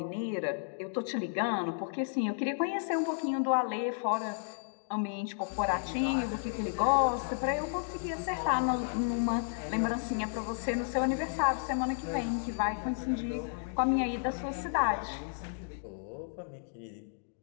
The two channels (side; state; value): right; silent; digital silence